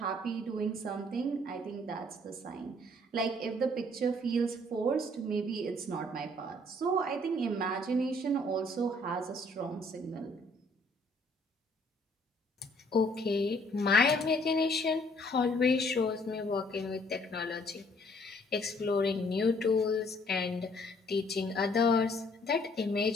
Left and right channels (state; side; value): normal; both; correlation 0.62